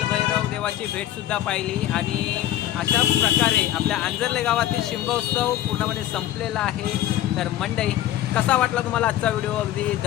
देवाची भेट सुद्धा पाहिली आणि अशा प्रकारे आपल्या आंजर्ले गावातील शिमगोत्सव पूर्णपणे संपलेला आहे. तर मंडळी कसा वाटला तुम्हाला आजचा व्हिडिओ? अगदी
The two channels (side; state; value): right; quieter; 13.0 dB